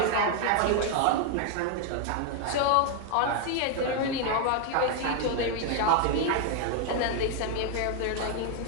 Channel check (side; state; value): both; different; correlation 0.00